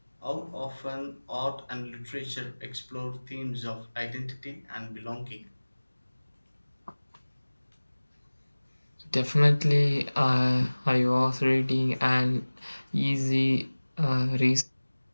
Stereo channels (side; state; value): both; inverted; correlation -1.00